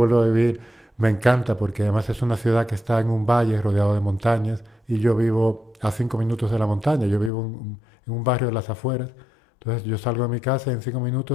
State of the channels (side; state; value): right; drops out; at 7.3 s